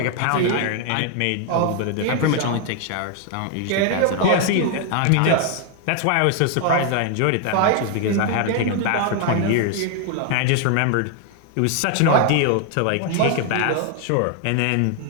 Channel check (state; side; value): different; both; correlation 0.00